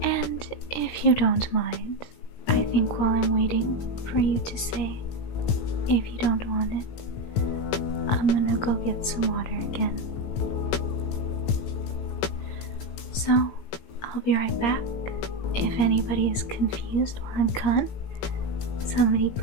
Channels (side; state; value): right; late; 17 ms